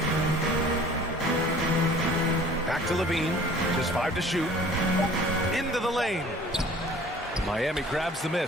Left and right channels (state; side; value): normal; both; correlation 0.49